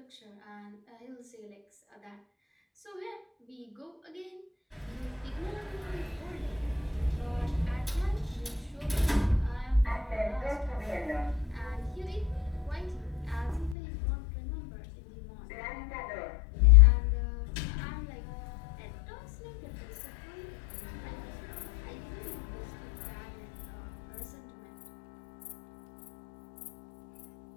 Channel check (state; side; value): drops out; right; at 13.8 s